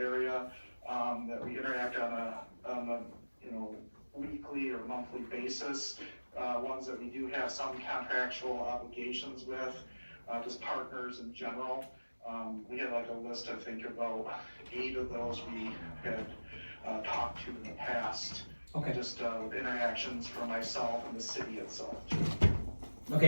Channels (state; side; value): inverted; both; correlation -1.00